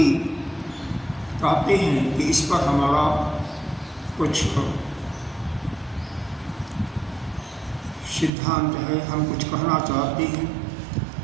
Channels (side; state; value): left; drops out; at 8.3 s